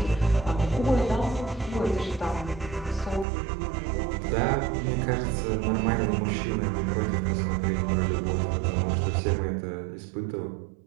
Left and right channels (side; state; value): left; drops out; at 3.2 s